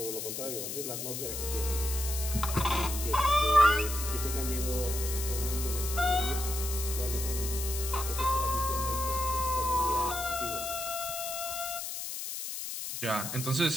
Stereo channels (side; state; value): left; noise; hiss, 5 dB below the sound